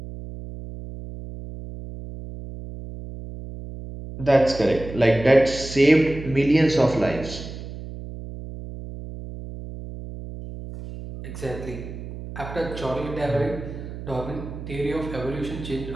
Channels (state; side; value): noise; right; hum, 11 dB below the sound